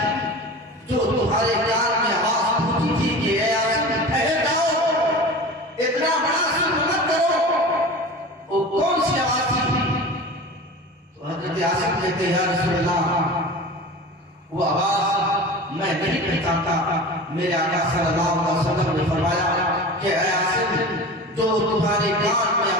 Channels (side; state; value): both; normal; correlation 0.34